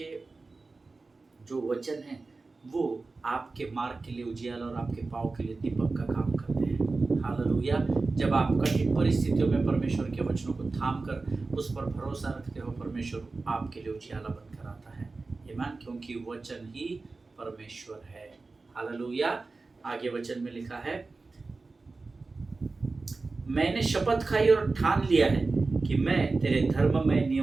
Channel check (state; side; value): quieter; left; 3.8 dB